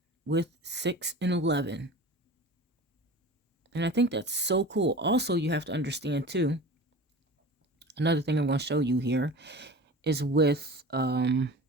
with 6 and 11. And I think that's so cool. Also, you have to understand too, another thing I'm going to show you here is with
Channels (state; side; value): normal; both; correlation 0.36